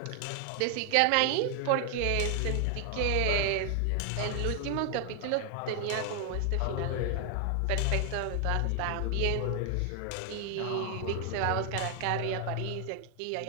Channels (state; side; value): different; both; correlation 0.00